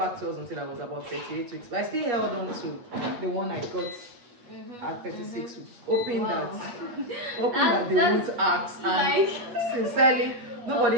to us until I was about 38 weeks. But I still held on to the one I got at 36 weeks, hoping that they won't ask. And sincerely,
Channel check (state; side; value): late; left; 8.4 ms